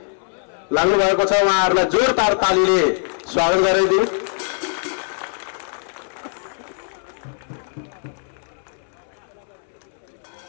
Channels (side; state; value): right; silent; 64 dB below the other